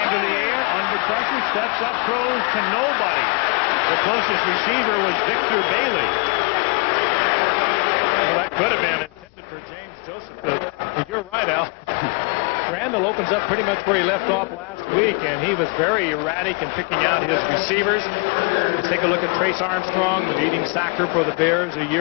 to the air, under pressure, steps up, throws to nobody. The closest receiver was Victor Bailey. Well, that could have been intended for James Joseph. But you're right, Al. Randall opens up pretty much where he left off last week, and he was very erratic in picking out his receivers. Let's take a look at Trace Armstrong, the leading sacker for the Bears a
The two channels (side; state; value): right; quieter; 33.6 dB